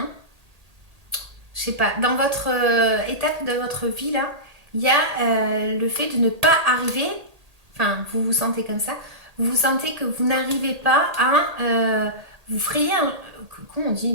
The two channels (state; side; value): late; left; 1.8 ms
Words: Je sais pas, dans votre étape de votre vie, là, il y a le fait de ne pas arriver, enfin, vous vous sentez comme ça, vous vous sentez que vous n'arrivez pas à vous frayer un... Comment on dit?